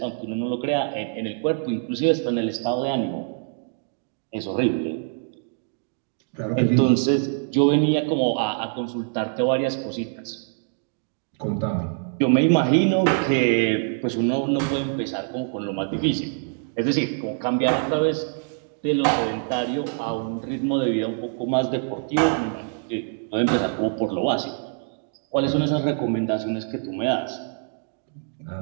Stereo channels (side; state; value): left; silent; 62 dB below the other